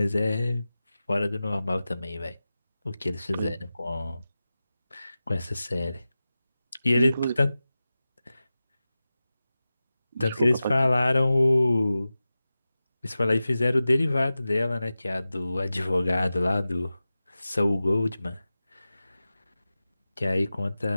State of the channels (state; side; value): inverted; both; correlation -0.95